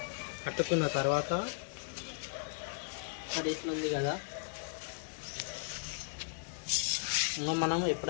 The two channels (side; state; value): right; silent; 54 dB below the other